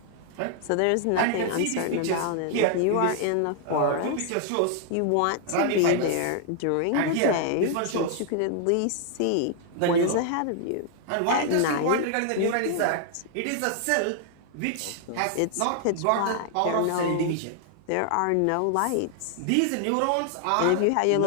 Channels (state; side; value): different; both; correlation 0.00